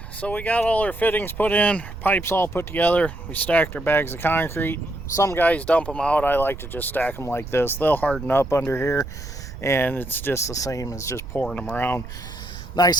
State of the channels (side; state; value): right; noise; rumble, 11 dB below the sound